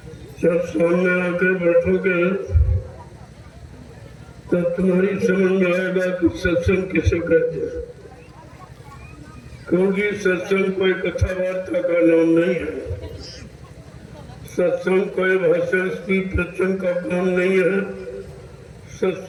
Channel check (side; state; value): both; identical; correlation 1.00